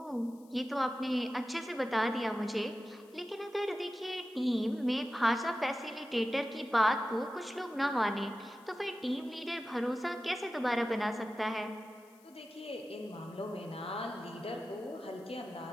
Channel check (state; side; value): noise; left; hiss, 29 dB below the sound